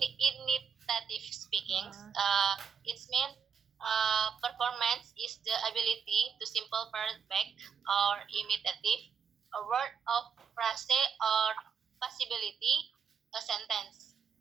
speaking. Its main performance is the ability to simple back or imitative a word of phrase or possibility a sentence.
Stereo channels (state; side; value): quieter; left; 6.7 dB